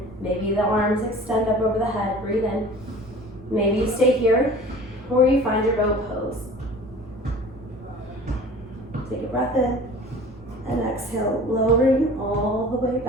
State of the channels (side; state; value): left; noise; rumble, 25 dB below the sound